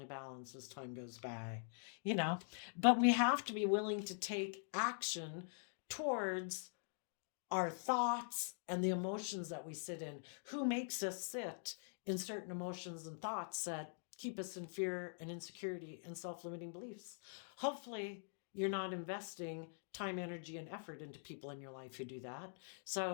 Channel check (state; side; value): silent; right; digital silence